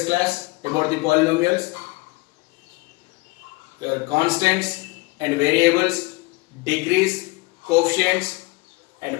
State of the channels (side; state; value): right; quieter; 24.6 dB